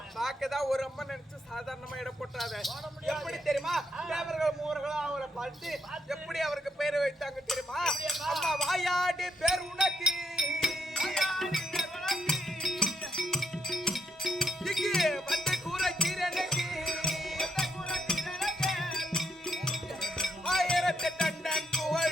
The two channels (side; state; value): both; normal; correlation 0.77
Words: பார்க்கதான் ஒரு அம்மா நினைச்சு சாதாரணமா இடம் போட்டாத. எப்படி தெரியுமா, தேவர்கள் மூவர்களும் அவரை பார்த்து எப்படி அவருக்கு பேரை வைத்தாங்க தெரியுமா? அம்மா வாயாடி பேர் உனக்கு வந்து கூற கீரனுக்கு 1000 டன்